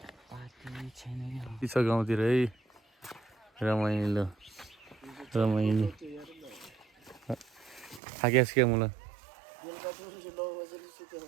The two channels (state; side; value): drops out; left; at 8.0 s